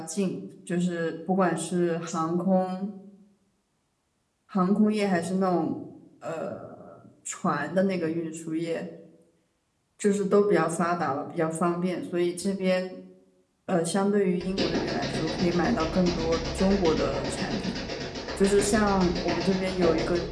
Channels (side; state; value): both; identical; correlation 1.00